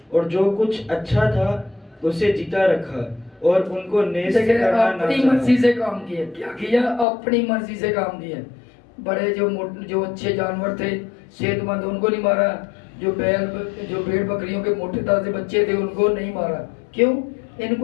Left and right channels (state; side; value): drops out; right; at 7.1 s